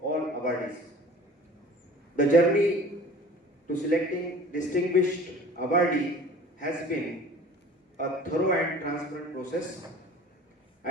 all awardees. The journey to selecting distinguished awardee has been a thorough and transparent process.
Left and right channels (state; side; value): normal; both; correlation 0.44